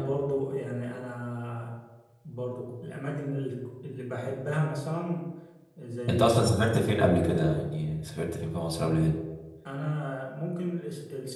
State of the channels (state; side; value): identical; both; correlation 1.00